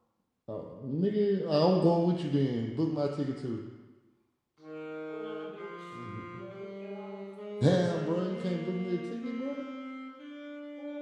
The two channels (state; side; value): identical; both; correlation 1.00